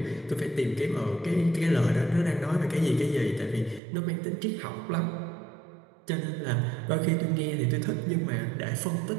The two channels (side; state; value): left; drops out; at 3.8 s